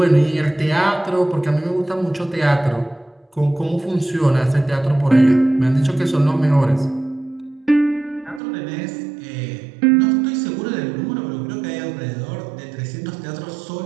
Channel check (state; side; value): drops out; left; at 8.4 s